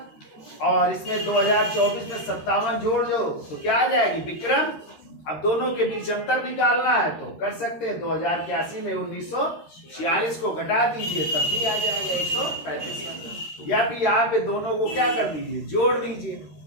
और इसमें 2024 में 57 जोड़ दो तो क्या आ जाएगी? विक्रम। अब दोनों के बीच अंतर निकालना है तो कर सकते हैं। 2081 में 1946 को घटा दीजिए, तब भी आ जाएगा 135। या फिर यहाँ पे दोनों को क्या कर दीजिए? जोड़ दीजिए,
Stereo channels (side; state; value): right; late; 13 ms